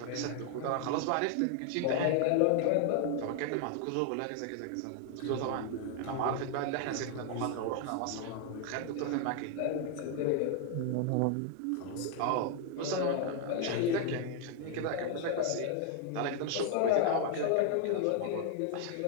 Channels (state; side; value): different; both; correlation 0.00